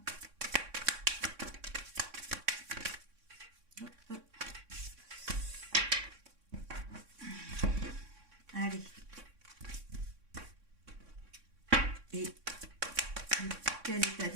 Allez. Et quel état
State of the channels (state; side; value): late; left; 3.6 ms